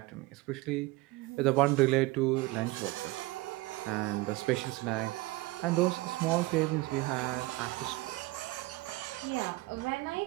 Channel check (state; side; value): quieter; left; 20.7 dB